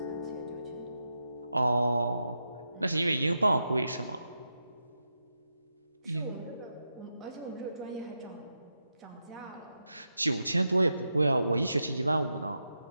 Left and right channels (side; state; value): both; inverted; correlation -0.87